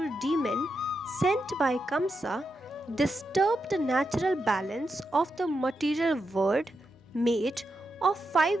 demon sent by Kamsa, disturbed the natural balance of the material world made of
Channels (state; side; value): normal; both; correlation 0.86